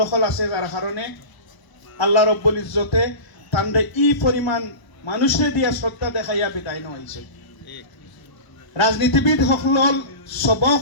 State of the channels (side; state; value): right; late; 1.0 ms